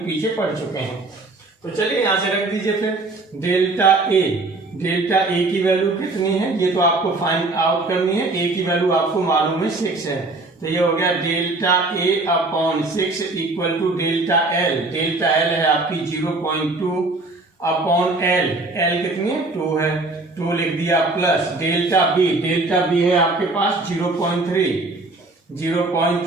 पीछे पढ़ चुके हैं। तो चलिए यहां से रख दीजिए फिर डेल्टा ए की वैल्यू कितनी है ये तो आपको फाइंड आउट करनी है। ए की वैल्यू आपको मालूम है 6 है, तो ये हो गया delta A upon 6 equal to delta L है आपकी 0.2 अपॉन एल कितनी है 2 है, 2 लिख दिया प्लस डेल्टा बी है आपके पास 0.3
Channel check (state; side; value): quieter; left; 3.2 dB